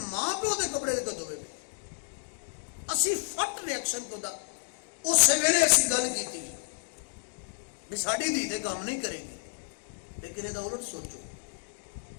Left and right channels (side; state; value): right; silent; digital silence